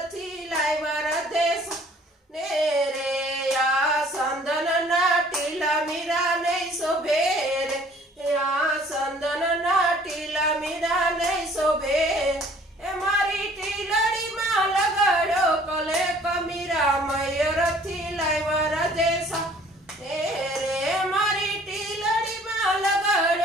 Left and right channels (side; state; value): both; normal; correlation 0.55